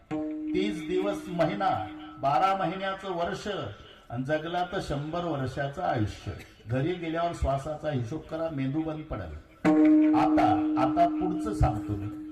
30 दिवस महिना, 12 महिन्याचं वर्ष आणि जगला तर 100 वर्षाचं आयुष्य. घरी गेल्यावर श्वासाचा हिशोब करा, मेंदू बंद पडेल. आता पुढचं सांगतो मी.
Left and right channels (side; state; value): both; identical; correlation 1.00